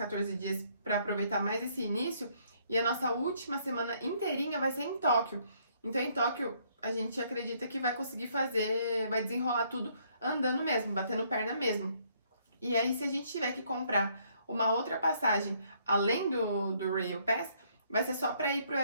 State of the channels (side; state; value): both; inverted; correlation -0.67